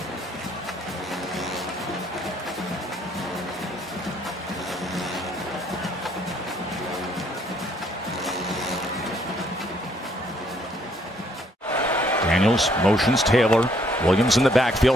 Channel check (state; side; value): normal; both; correlation 0.67